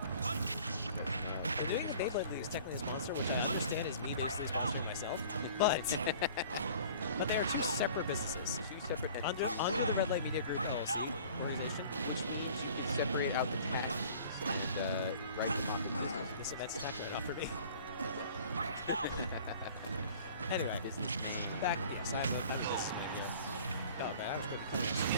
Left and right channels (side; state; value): both; inverted; correlation -0.48